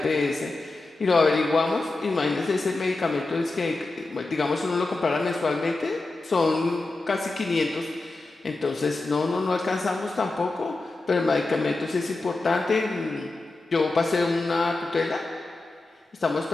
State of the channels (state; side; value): quieter; right; 3.2 dB